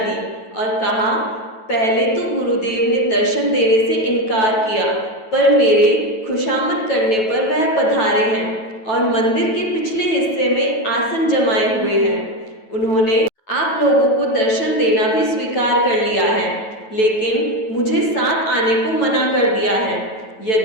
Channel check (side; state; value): right; late; 9.2 ms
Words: और कहा, पहले तो गुरुदेव ने दर्शन देने से इनकार किया, पर मेरे खुशामद करने पर वह पधारे हैं और मंदिर के पिछले हिस्से में आसन जमाए हुए हैं। उन्होंने आप लोगों को दर्शन देना भी स्वीकार कर लिया है, लेकिन मुझे साथ आने को मना कर दिया है।